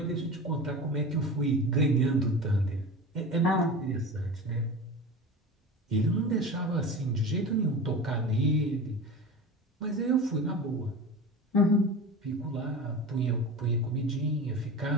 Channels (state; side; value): normal; both; correlation 0.31